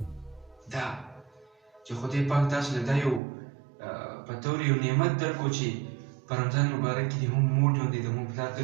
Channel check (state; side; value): drops out; left; at 3.2 s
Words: دا چې خدای پاک تاسو له دا یو په طور یو نعمت درکړو چې په رمضان مبارک کې دې هم مور ژوندی د مور پلار که